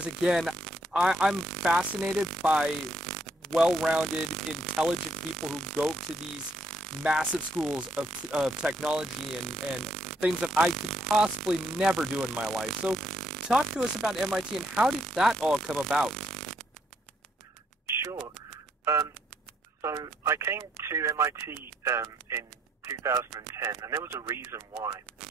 again, I'm fascinated by well-rounded, intelligent people who go to these massive schools of technology and things that I could possibly never do in my life. So talk to us about MIT and how did that all come about? Sure. So I came to MIT in 2010, and there was a reason why.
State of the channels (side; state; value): both; normal; correlation 0.71